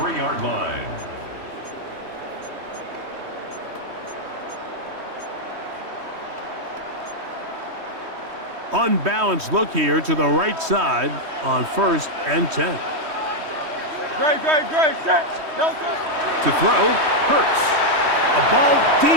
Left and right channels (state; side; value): late; left; 3.1 ms